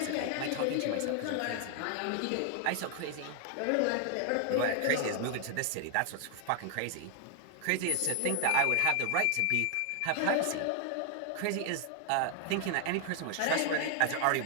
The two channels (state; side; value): different; both; correlation 0.00